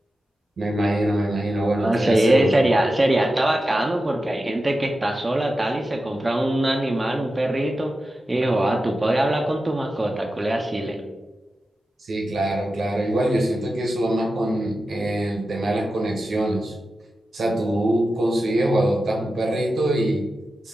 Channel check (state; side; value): normal; both; correlation 0.92